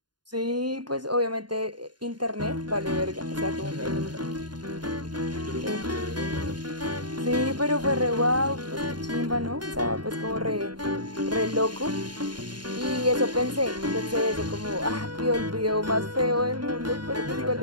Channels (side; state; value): left; late; 0.71 ms